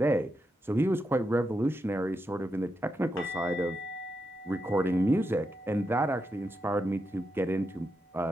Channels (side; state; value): both; normal; correlation 0.85